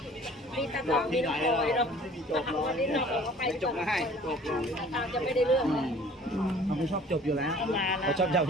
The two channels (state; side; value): normal; both; correlation 0.50